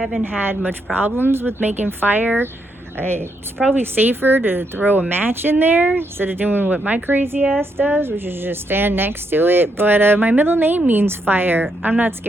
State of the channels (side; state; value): both; normal; correlation 0.78